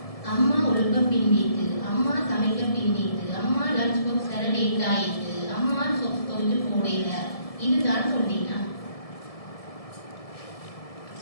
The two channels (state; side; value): late; right; 1.7 ms